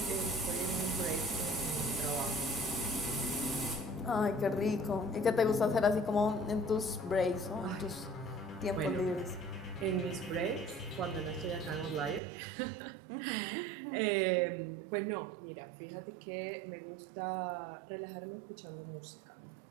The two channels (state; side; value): drops out; left; at 12.2 s